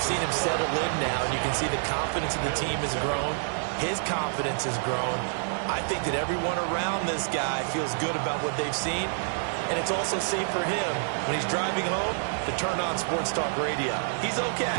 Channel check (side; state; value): left; silent; digital silence